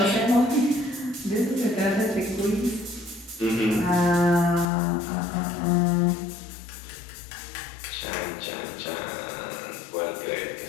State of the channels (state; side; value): drops out; right; at 4.7 s